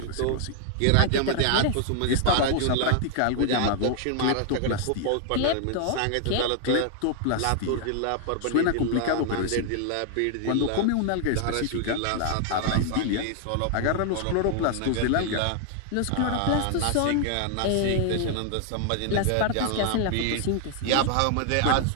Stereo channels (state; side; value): different; both; correlation 0.00